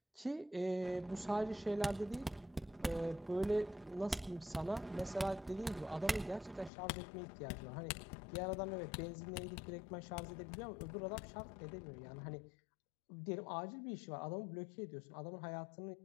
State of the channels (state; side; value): drops out; right; at 6.7 s